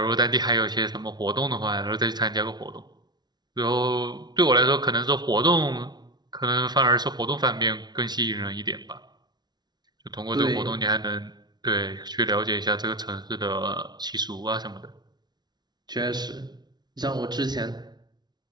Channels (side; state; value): left; late; 0.20 ms